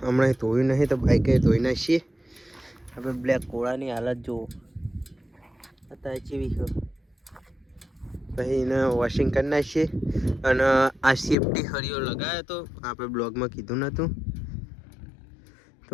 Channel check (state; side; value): drops out; right; at 11.4 s